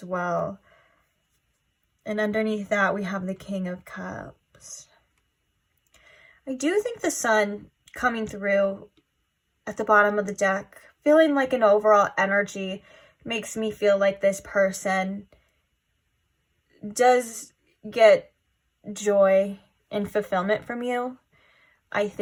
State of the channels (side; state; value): both; identical; correlation 1.00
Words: well. And underneath that, we have the King of Cups. I do think the Sun coming through at the bottom of the deck, feeling like an overall energy, makes me feel like this person does get joy and fulfillment from you. I